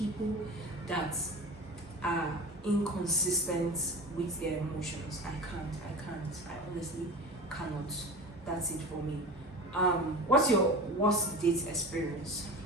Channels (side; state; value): both; normal; correlation 0.34